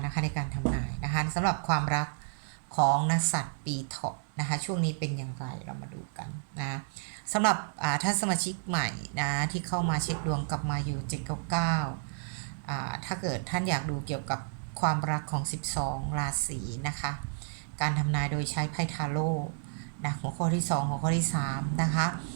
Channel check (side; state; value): left; silent; digital silence